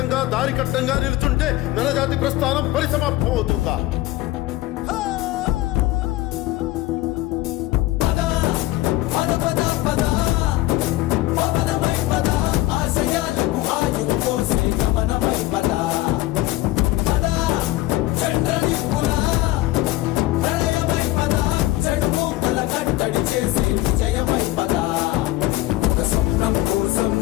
దారి కట్టంగా నిలుచుంటే నరజాతి ప్రస్థానం పరిసమాప్తం అవుతుందా?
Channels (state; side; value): quieter; right; 17.5 dB